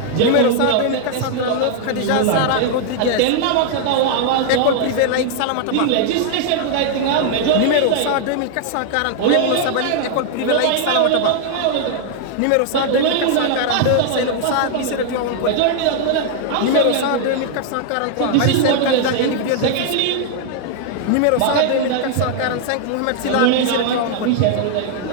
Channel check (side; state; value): both; different; correlation 0.00